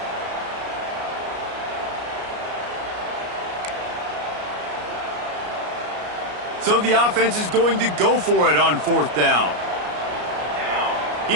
So the offense is going to go for it on 4th down. He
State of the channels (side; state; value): left; late; 33 ms